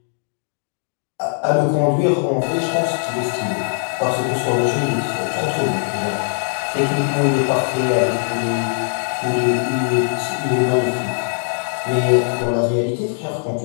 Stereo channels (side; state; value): right; silent; digital silence